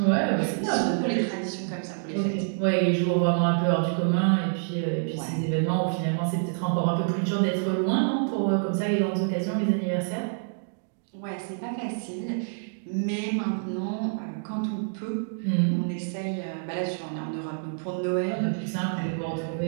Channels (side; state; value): left; silent; digital silence